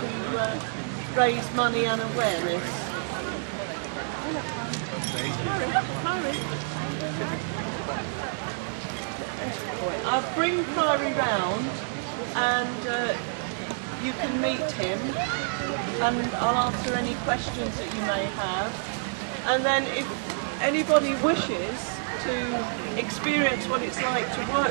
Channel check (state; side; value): silent; left; digital silence